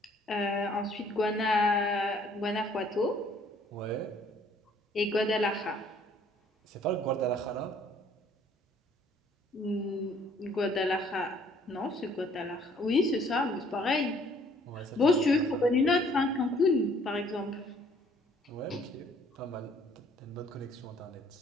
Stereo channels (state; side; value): normal; both; correlation 0.60